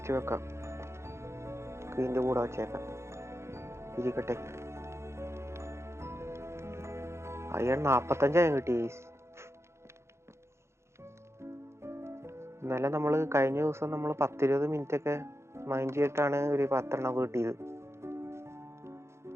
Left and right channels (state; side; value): late; left; 0.13 ms